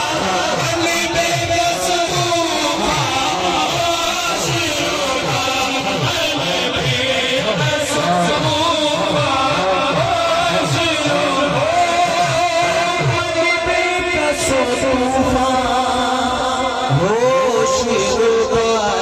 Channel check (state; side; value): identical; both; correlation 1.00